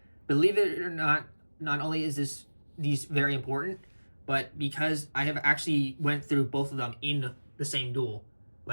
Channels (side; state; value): both; inverted; correlation -1.00